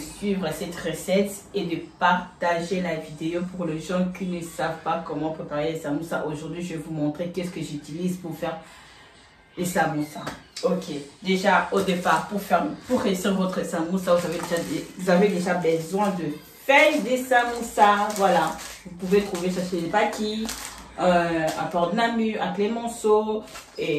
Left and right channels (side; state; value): both; identical; correlation 1.00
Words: cette recette et de partager la vidéo pour les gens qui ne savent pas comment préparer les samoussas. Aujourd'hui, je vais vous montrer qu'est-ce que j'utilise pour faire les samoussas. Ok, déjà au départ, pour réussir votre samoussa, vous avez déjà besoin de feuilles de samoussa. Voilà, vous pouvez trouver ça chez les paquis, à Port de Namur, à Clémenceau.